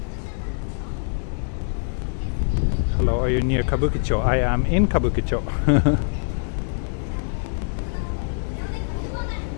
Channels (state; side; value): silent; right; digital silence